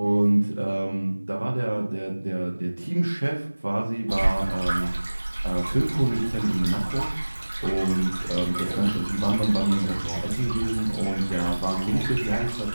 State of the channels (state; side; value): inverted; both; correlation -1.00